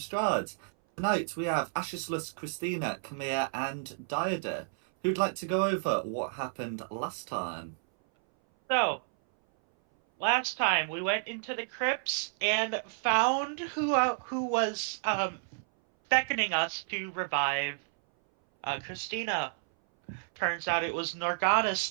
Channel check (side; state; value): left; silent; 57 dB below the other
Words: Strahd. Tonight we have Ashislus, Christina, Camille, and Diada, who'd like to go over what happened last time. So, last time we went into the crypts and found who was beckoning us to revive Christina. Turns out it was Norganis,